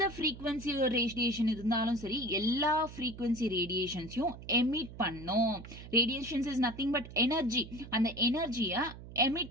frequency radiation இருந்தாலும் சரி எல்லா frequency radiationsயும் emit பண்ணும். Radiations is nothing but energy. அந்த எனர்ஜியை emit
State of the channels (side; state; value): right; noise; hum, 14 dB below the sound